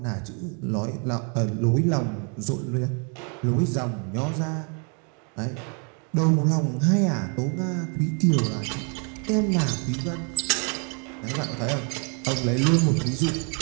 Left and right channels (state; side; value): quieter; left; 38.0 dB